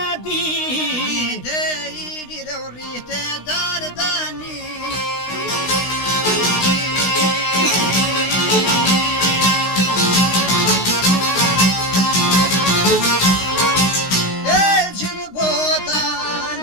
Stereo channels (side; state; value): right; late; 16 ms